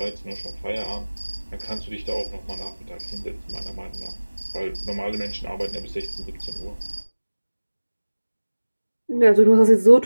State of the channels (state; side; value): inverted; both; correlation -1.00